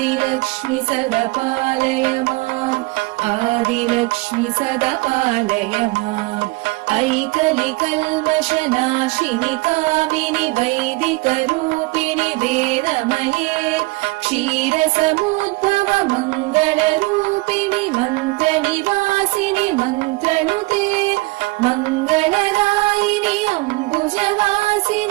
सदा पालय माम् आदिलक्ष्मि सदा पालय माम् ऐकलिकल्मषनाशिनि कामिनि वैदिकरूपिणि वेदमये क्षीरसमुद्भव मङ्गलरूपिणि मन्त्रनिवासिनि मन्त्रनुते मङ्गलदायिनि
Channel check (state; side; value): quieter; left; 24.0 dB